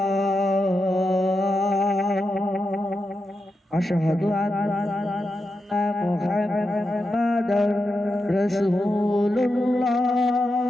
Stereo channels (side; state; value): both; normal; correlation 0.88